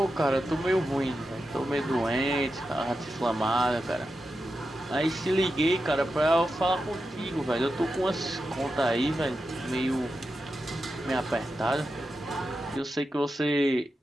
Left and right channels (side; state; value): both; normal; correlation 0.89